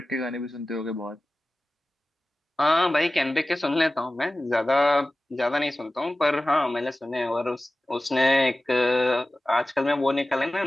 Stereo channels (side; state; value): both; normal; correlation 0.96